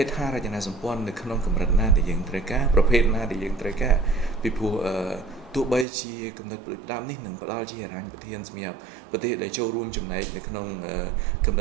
េដ្ឋារចនាសម្ព័ន្ធនៅក្នុងកម្រិតណាដែលយើងត្រូវការប្រភេទណាដែលយើងត្រូវការពីព្រោះទោះបីជាគំនិតផ្ដាំនេះនឹងផ្ដល់ជាហិរញ្ញប្បទានសម្រាប់ប្រទេសដែលចូលរួមចំណែកនៅក្នុងគំន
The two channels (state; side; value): drops out; left; at 5.9 s